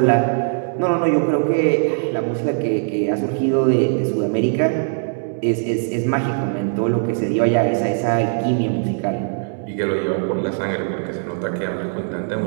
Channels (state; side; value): silent; left; digital silence